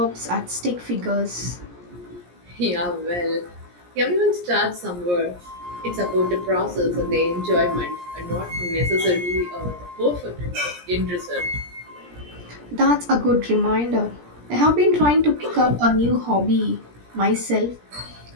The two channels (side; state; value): left; late; 17 ms